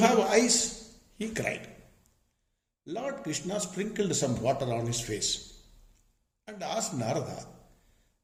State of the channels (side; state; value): both; identical; correlation 1.00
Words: eyes? He cried. Lord Krishna sprinkled some water on his face and asked Narada,